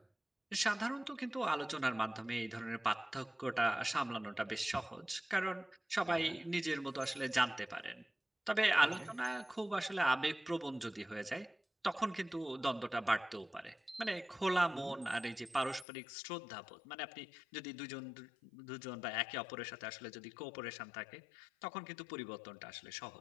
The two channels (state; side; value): drops out; right; at 15.9 s